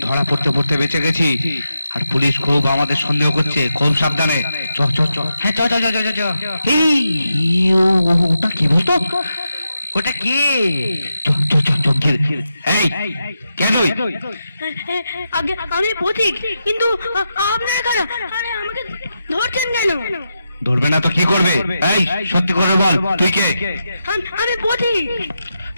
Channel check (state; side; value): inverted; both; correlation -0.87